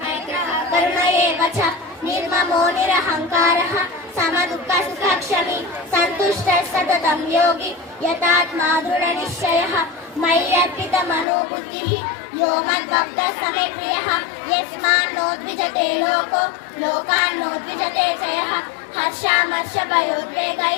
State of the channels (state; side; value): drops out; right; at 11.2 s